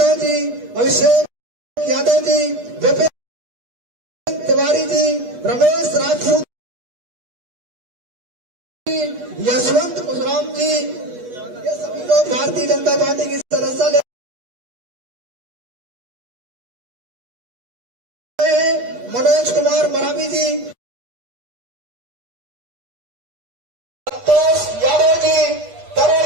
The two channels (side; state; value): left; late; 8.3 ms